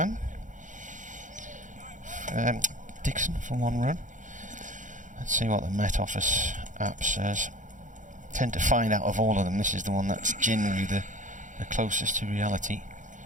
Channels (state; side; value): late; left; 0.37 ms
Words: Dixon for one run. Let's see what the Met Office app says. Tend to find out of all of them, this is the one that's generally the closest to reality.